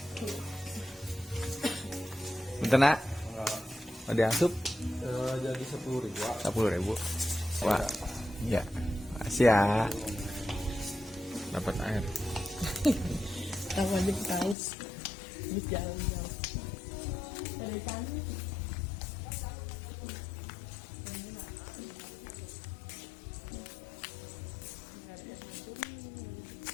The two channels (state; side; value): drops out; right; at 14.6 s